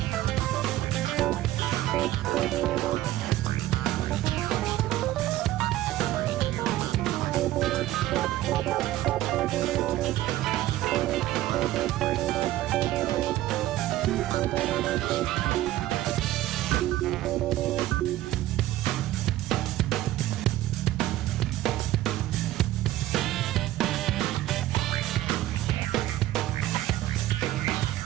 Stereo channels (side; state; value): left; quieter; 14.8 dB